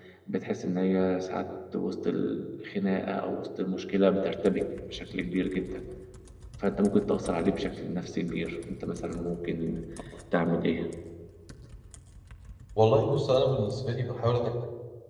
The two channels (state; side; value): identical; both; correlation 1.00